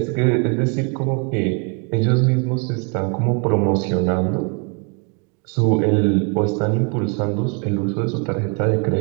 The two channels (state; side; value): quieter; left; 35.2 dB